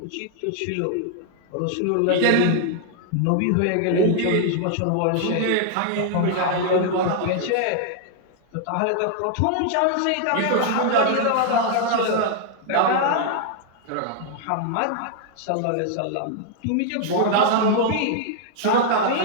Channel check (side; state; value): both; different; correlation 0.00